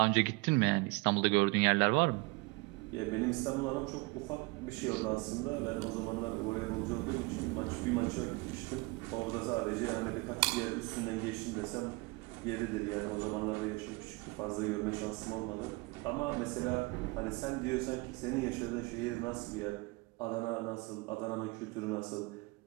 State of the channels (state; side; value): quieter; left; 25.6 dB